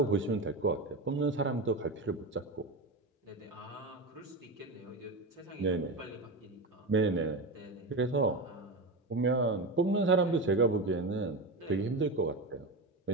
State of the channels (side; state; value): left; quieter; 3.0 dB